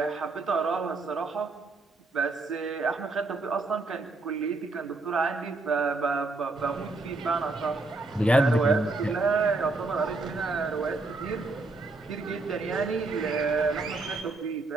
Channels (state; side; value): quieter; left; 3.4 dB